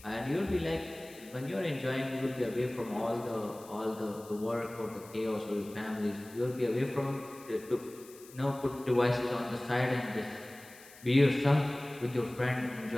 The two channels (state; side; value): noise; left; hiss, 21 dB below the sound